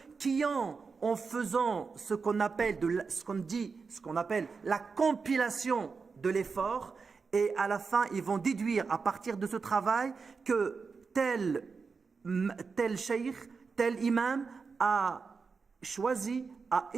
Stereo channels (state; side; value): quieter; left; 5.0 dB